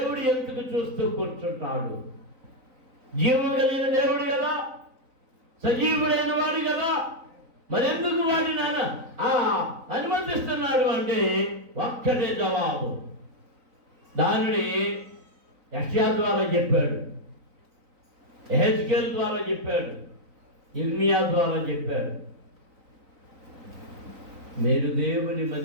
ఎందుకు చూస్తూ కూర్చుంటాడు? జీవం కలిగిన దేవుడు కదా, సజీవుడైన వాడు కదా, మరి ఎందుకు వాడి నాన్న అనుమతిస్తున్నాడు అంటే ఒక్కటే జవాబు. దానిని యెషయా ద్వారా చెప్పాడు, యెహెజ్కేలు ద్వారా చెప్పాడు, ఇర్మియా ద్వారా చెప్పాడు. మీరు దేవుని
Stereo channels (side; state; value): left; late; 3.9 ms